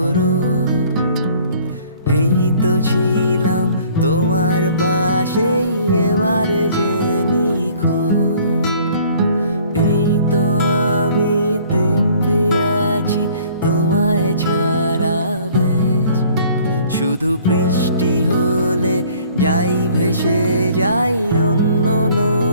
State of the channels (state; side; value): inverted; both; correlation -0.55